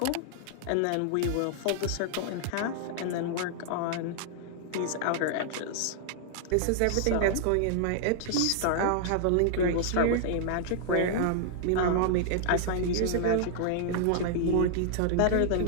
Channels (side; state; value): both; different; correlation -0.01